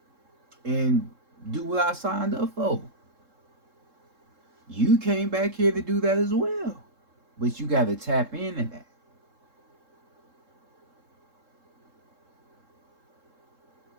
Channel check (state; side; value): late; left; 3.7 ms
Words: and do what I signed up for. You came back here to do that as well. But you got to tap into that.